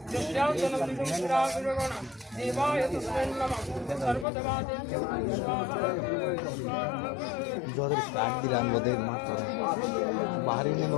जो स्टार्ट दिलान बोदे मात्र बाहर ही नहीं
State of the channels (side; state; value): right; drops out; at 4.2 s